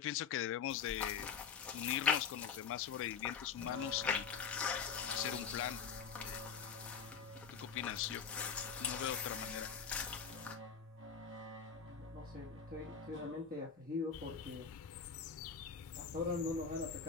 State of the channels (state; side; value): quieter; right; 6.4 dB